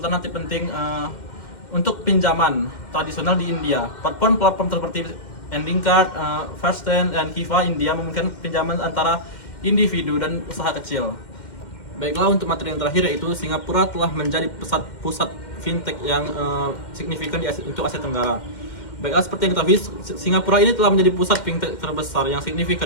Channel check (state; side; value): late; right; 2.1 ms